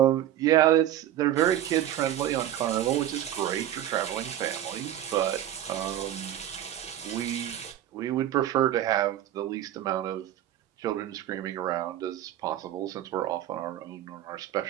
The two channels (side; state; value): left; quieter; 12.1 dB